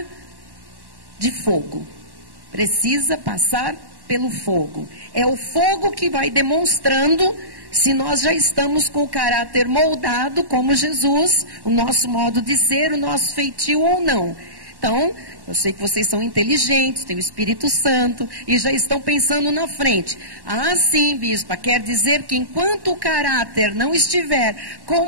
de fogo. Precisa passar pelo fogo. É o fogo que vai demonstrando se nós já estamos com o caráter moldado como Jesus, o nosso modo de ser, o nosso feitio ou não. Então, eu sei que vocês são inteligentes, têm o Espírito Santo e já estão pensando na frente. Ah, sim, bispa, quer dizer que enquanto o caráter não estiver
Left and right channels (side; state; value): left; late; 1.1 ms